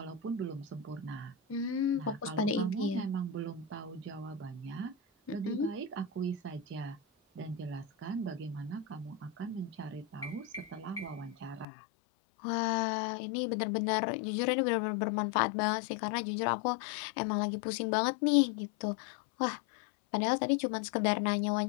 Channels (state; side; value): drops out; right; at 11.7 s